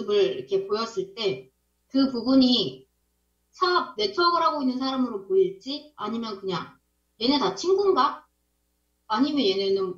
이렇게 보였을 때 그 부분이 사업 네트워크를 하고 있는 사람으로 보일지 아니면 그냥 얘네 다 친구인가? 아니면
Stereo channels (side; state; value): both; identical; correlation 1.00